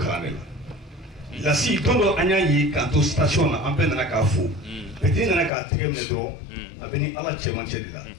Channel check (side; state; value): right; drops out; at 5.5 s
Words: ne la si tondo anya yi ka to station na ampe na ka fu petit na ka tegem ne dro abeni ala chema chedila